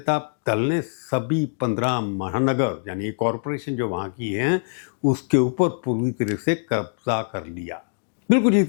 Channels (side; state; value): right; silent; digital silence